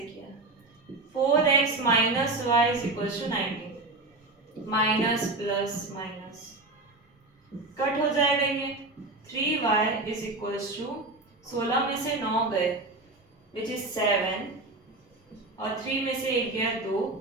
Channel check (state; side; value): quieter; left; 3.0 dB